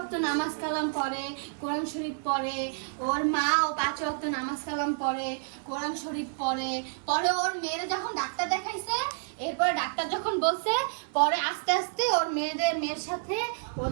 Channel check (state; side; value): silent; left; 58 dB below the other